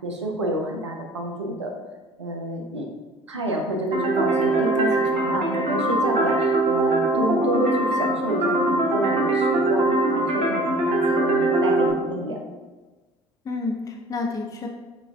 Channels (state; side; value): normal; both; correlation 0.48